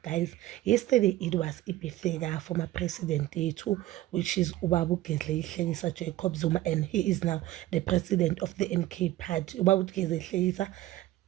Guys, yesterday it was ibirthday former president yethu, which is Ubaba uGedle Hlekisa Jacob Zuma, and he is now the president of the MK party. Ubaba uGedle Hlekisa,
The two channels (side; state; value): left; quieter; 15.7 dB